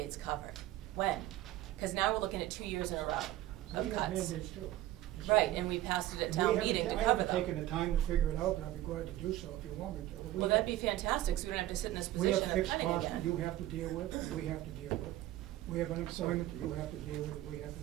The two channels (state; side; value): quieter; left; 14.7 dB